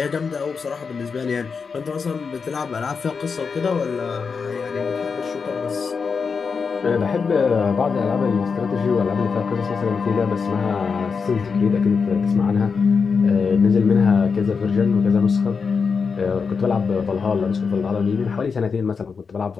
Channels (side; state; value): right; quieter; 5.4 dB